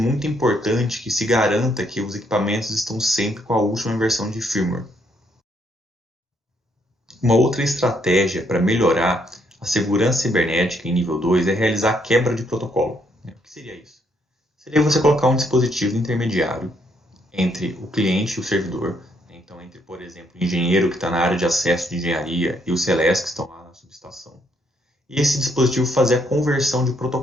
importante que se garanta que os equipamentos estão sempre com a última versão de firmware. Uma outra estratégia para melhorar a segurança cibernética em nível 2 é realizar a quebra de protocolo. O que seria isso? Seria você colocar um dispositivo intermediário entre o cliente e o servidor. Então, entre, por exemplo, o engenheiro que está na área de acesso de engenharia e os relés que estão lá na subestação. E esse dispositivo fazer a conversão de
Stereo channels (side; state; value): both; normal; correlation 0.72